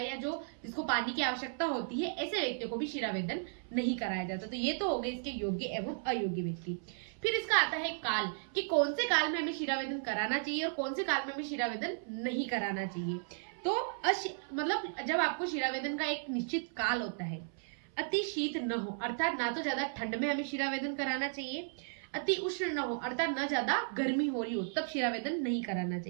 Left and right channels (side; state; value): left; silent; 55 dB below the other